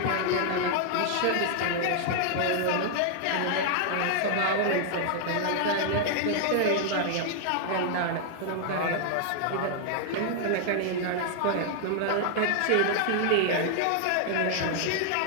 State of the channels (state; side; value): different; both; correlation -0.01